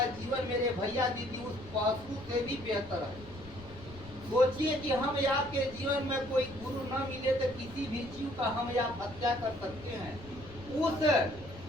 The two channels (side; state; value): left; noise; rumble, 17 dB below the sound